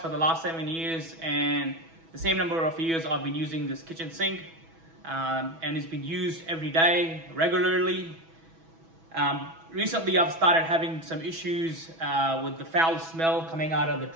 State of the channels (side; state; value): left; late; 6.1 ms